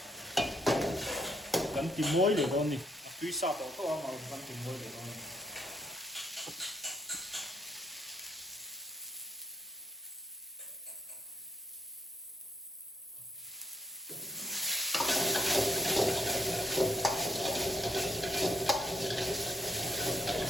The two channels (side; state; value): both; normal; correlation 0.73